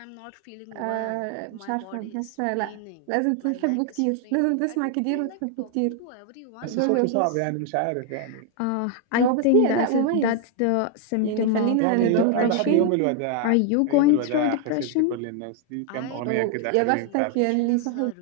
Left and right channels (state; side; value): different; both; correlation 0.00